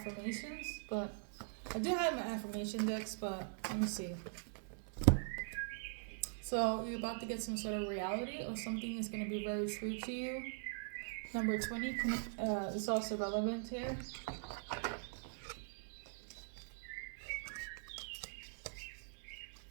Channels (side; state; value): left; silent; digital silence